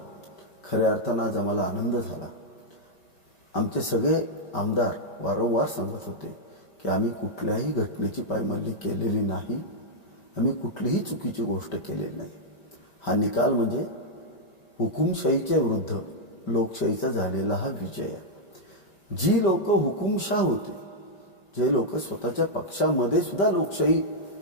खऱ्या अर्थानं आज आम्हाला आनंद झाला। आमचे सगळे आमदार वारंवार सांगत होते की आम्ही कुठल्याही घटनेची पायमल्ली केलेली नाही, आम्ही कुठलीही चुकीची गोष्ट केलेली नाही। हा निकाल म्हणजे हुकुमशाहीच्या विरुद्ध लोकशाहीचा झालेला हा विजय आहे। जी लोक हुकुमशाह होते, जे लोक स्वतःच्या पक्षामध्ये सुद्धा लोकशाही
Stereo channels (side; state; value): right; late; 5.2 ms